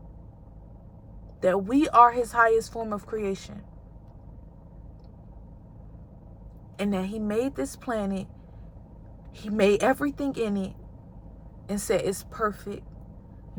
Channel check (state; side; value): identical; both; correlation 1.00